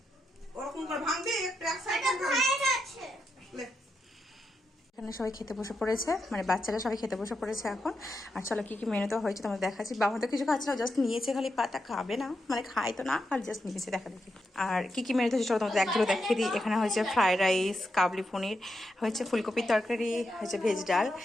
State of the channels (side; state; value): both; normal; correlation 0.85